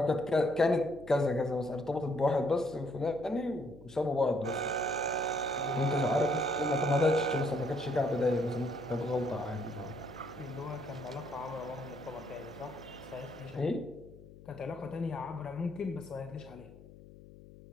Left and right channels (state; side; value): noise; left; hum, 19 dB below the sound